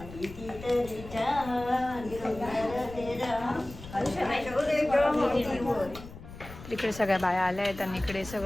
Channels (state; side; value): noise; left; rumble, 15 dB below the sound